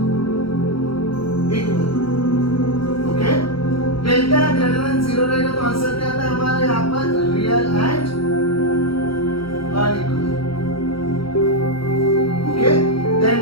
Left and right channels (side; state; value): right; late; 0.75 ms